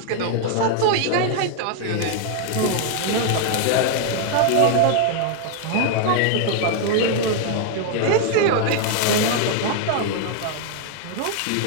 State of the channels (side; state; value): both; different; correlation 0.00